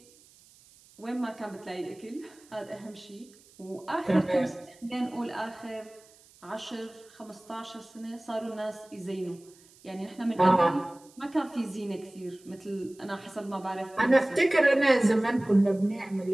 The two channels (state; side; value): noise; right; hiss, 27 dB below the sound